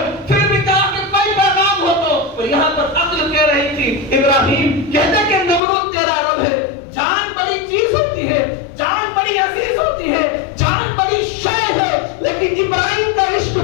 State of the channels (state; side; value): drops out; right; at 5.6 s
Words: پھر بھی کہا کہ کوئی پیغام ہو تو، اور یہاں پر عقل کہہ رہی تھی ابراہیم کہتے کہ نمرود تیرا رب ہے، جان بڑی چیز ہوتی ہے، جان بڑی عزیز ہوتی ہے، جان بڑی شے ہے، لیکن ابراہیم کا عشق